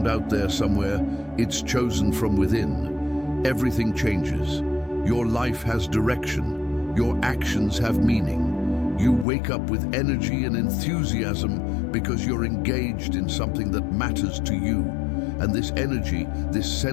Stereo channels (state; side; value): drops out; right; at 9.2 s